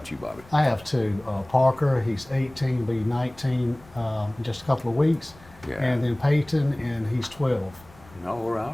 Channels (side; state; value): left; noise; rumble, 24 dB below the sound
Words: you, Bobby? I have two. Parker, he's 18, be 19 in just a couple of weeks. Yeah. And then Peyton, and he's 12. All